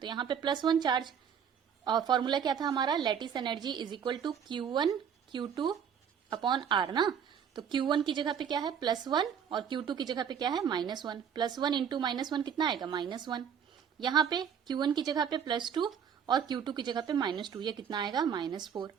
तो यहाँ पे +1 चार्ज, और फॉर्मूला क्या था हमारा, lattice energy is equal to Q1 Q2 upon R ना। तो Q1 की जगह पे क्या है +1 और Q2 की जगह पे क्या है -1। +1 इंटू -1 कितना आएगा, -1। यहाँ पे Q1 की जगह पे +2 और Q2 की जगह पे -2, ये कितना आएगा, -4।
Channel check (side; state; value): left; quieter; 7.9 dB